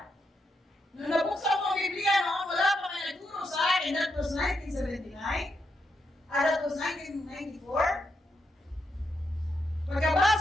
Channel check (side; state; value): both; normal; correlation 0.81